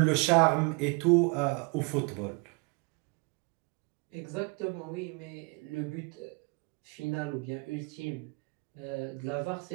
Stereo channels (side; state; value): left; quieter; 30.9 dB